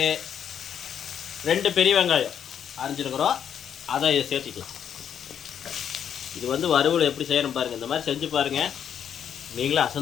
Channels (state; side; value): quieter; right; 8.7 dB